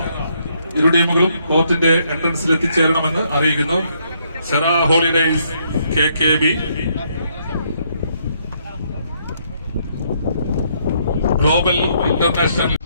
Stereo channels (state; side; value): inverted; both; correlation -0.72